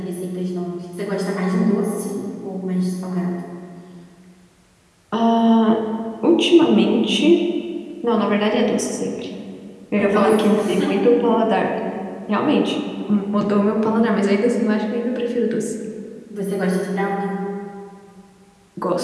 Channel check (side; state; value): both; identical; correlation 1.00